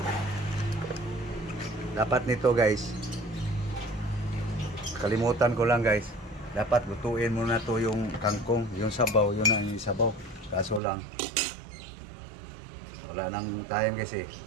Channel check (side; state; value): left; drops out; at 10.8 s